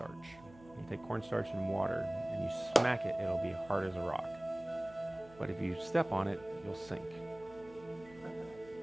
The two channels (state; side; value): noise; right; hum, 22 dB below the sound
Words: You take cornstarch and water and you smack it, it'll be hard as a rock. But if you step on it, you'll sink.